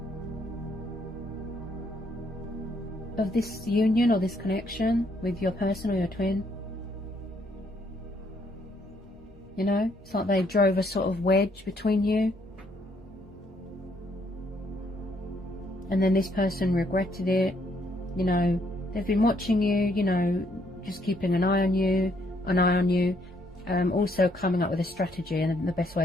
of this union or this connection with your person or your twin. You know, it's like they drove a sort of wedge between you. And then this person regretted it. You know, they've been watching you, you know, just keeping an eye on you, also coming up with a strategy and the best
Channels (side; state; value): both; normal; correlation 0.70